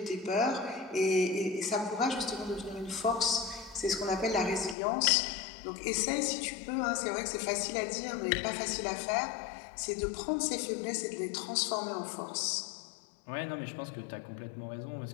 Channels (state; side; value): drops out; right; at 4.8 s